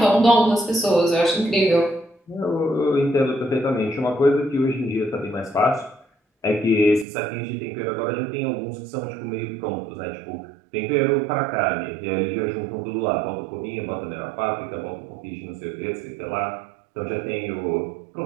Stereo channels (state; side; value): drops out; left; at 7.1 s